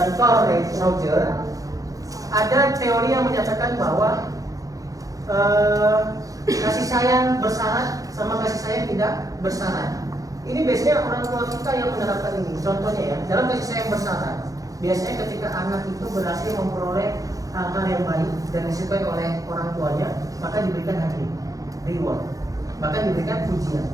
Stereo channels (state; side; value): late; left; 0.17 ms